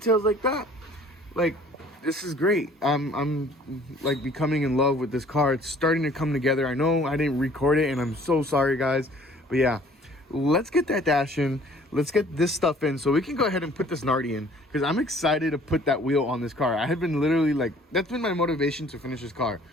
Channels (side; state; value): both; normal; correlation 0.54